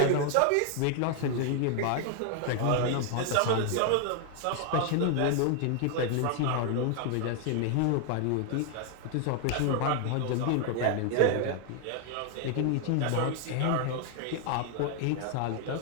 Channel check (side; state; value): both; different; correlation 0.00